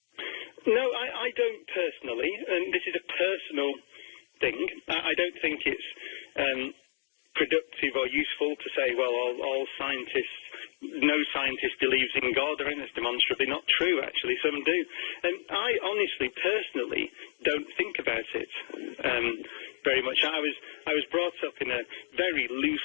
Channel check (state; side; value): silent; right; digital silence